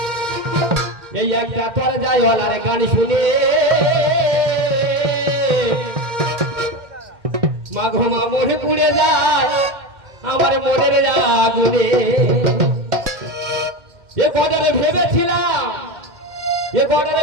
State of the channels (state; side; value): late; left; 2.1 ms